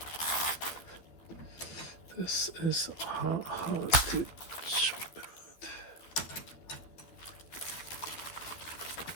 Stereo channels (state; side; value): late; right; 12 ms